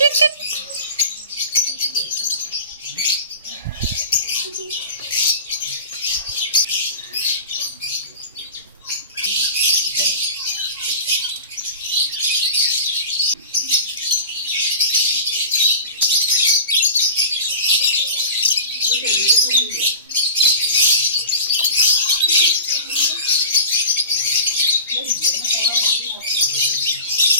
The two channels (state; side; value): inverted; both; correlation -0.35